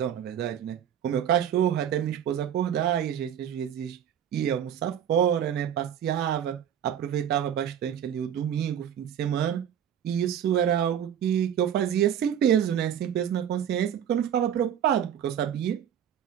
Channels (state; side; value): quieter; left; 9.5 dB